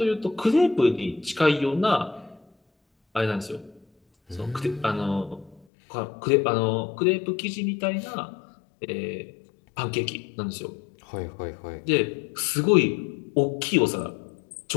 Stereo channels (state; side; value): drops out; right; at 5.6 s